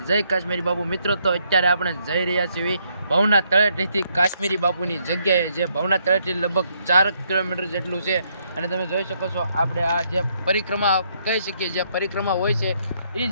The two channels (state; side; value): inverted; both; correlation -0.73